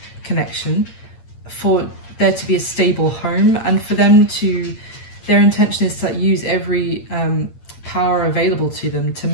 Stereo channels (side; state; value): right; late; 8.7 ms